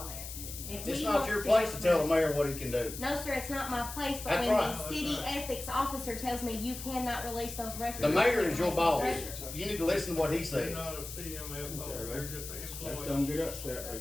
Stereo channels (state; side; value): noise; left; hiss, 10 dB below the sound